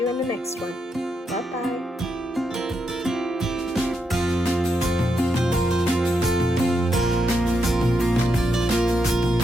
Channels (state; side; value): normal; both; correlation 0.82